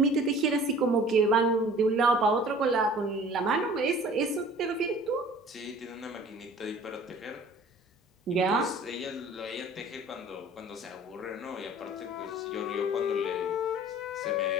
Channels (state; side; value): normal; both; correlation 0.47